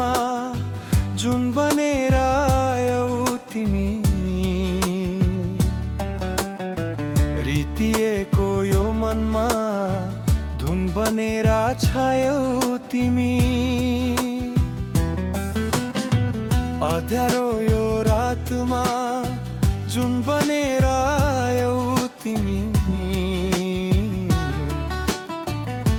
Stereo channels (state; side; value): identical; both; correlation 1.00